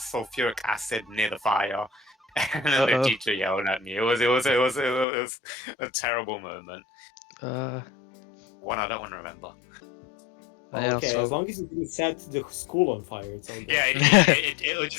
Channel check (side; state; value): right; drops out; at 5.1 s